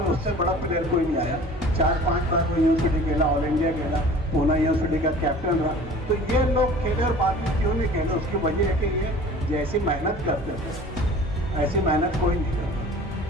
उससे बड़ा प्लेयर कोई नहीं आया। 4-5 बार वो यूनिवर्सिटी खेला, ऑल इंडिया खेला, पूना यूनिवर्सिटी का कैप्टन रहा। तो ये लोग खेले और बाद में क्यों नहीं खेले, उसकी वजह है कि ये जैसी मेहनत करते थे ऐसी मेहनत कोई नहीं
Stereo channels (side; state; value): both; normal; correlation 0.44